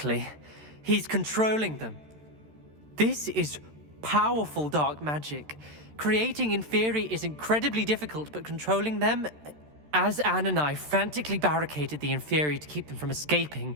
He's controlling them. This is powerful dark magic. Creating Inferi is incredibly difficult, but controlling them, As Anne and I frantically barricaded the Inferi to keep them from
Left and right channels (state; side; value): late; left; 13 ms